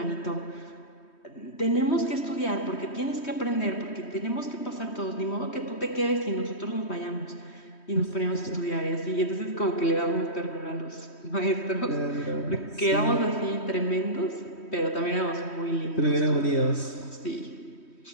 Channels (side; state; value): right; late; 3.1 ms